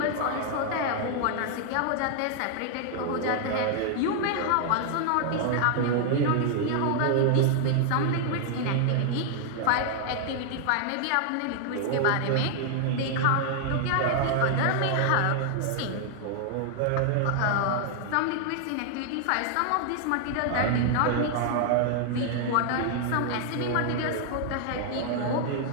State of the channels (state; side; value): different; both; correlation 0.00